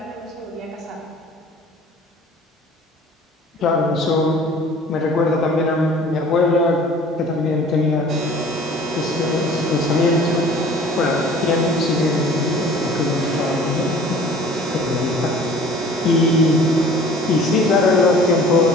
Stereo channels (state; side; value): normal; both; correlation 0.48